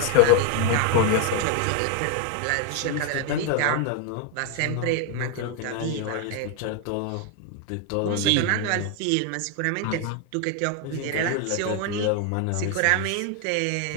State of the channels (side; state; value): both; different; correlation 0.00